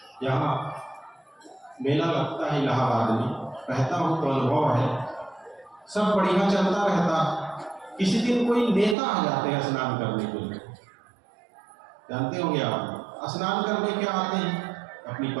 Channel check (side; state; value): left; drops out; at 9.0 s